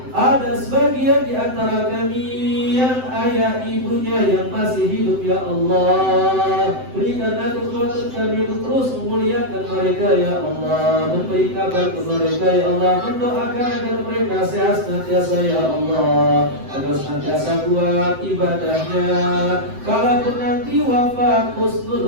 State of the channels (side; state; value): left; late; 7.8 ms